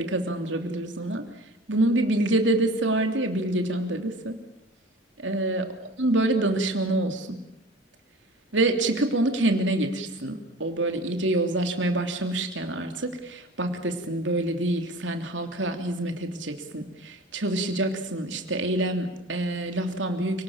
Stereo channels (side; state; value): both; normal; correlation 0.40